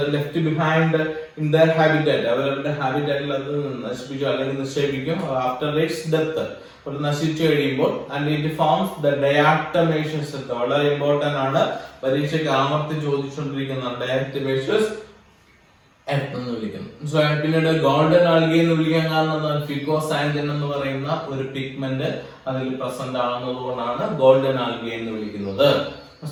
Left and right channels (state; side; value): identical; both; correlation 1.00